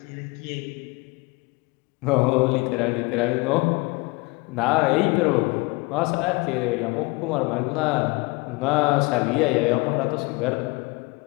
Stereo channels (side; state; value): right; quieter; 25.8 dB